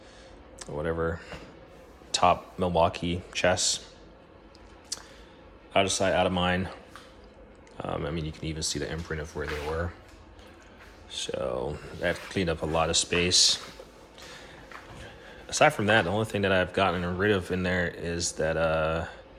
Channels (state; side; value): identical; both; correlation 1.00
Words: whatever, top Milwaukee chest. Out of sight, out of mind. You can even see the imprint of where they were. So that cleaned up a lot of space. Aside from that, the only thing that I've gotten rid of in there is that